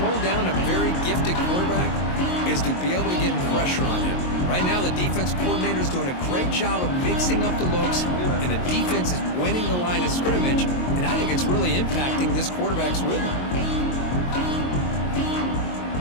down a very gifted quarterback is to be able to get pressure on him. Right now, the defense coordinator is doing a great job of mixing up the looks, and the defense is winning the line of scrimmage, and I think it's really impacting this quarterback's rhythm.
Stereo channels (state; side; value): late; right; 22 ms